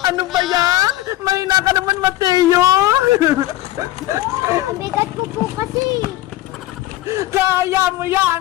Ano ba yan? Mahina ka naman, Mateo! Ang bigat ko po kasi. Kaya mo yan!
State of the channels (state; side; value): quieter; right; 16.2 dB